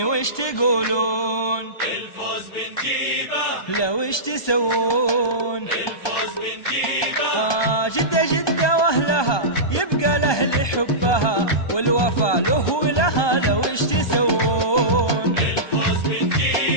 وش تقولون؟ الفوز بنجيبه لو وش تسوون؟ الفوز بنجيبه جدة جدة وأهلها يبقى الأهل حبها والوفا له ولها لو وش تسوون؟ الفوز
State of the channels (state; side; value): late; right; 1.2 ms